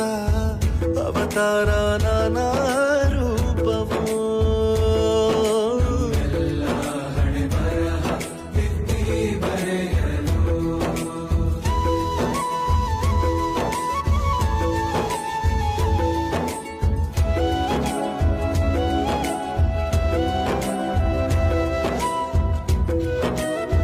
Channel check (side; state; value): both; identical; correlation 1.00